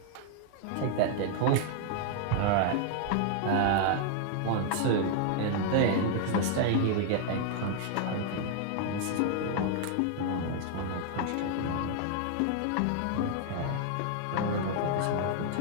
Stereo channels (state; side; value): different; both; correlation 0.00